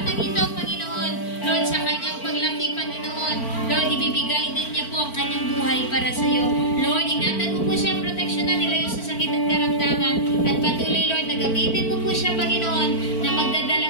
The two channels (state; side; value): late; right; 4.4 ms